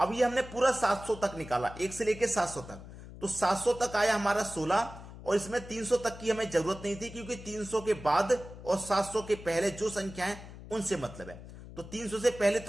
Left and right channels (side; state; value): left; noise; hum, 15 dB below the sound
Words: ये हमने पूरा 700 तक निकाला, 1 से लेकर 700 तक, तो 700 तक आया हमारा 16 और इसमें 300 तक की हमें जरूरत नहीं थी क्योंकि 300 के बाद और 700 के पहले जो संख्या है उनसे मतलब है। तो 300 से पहले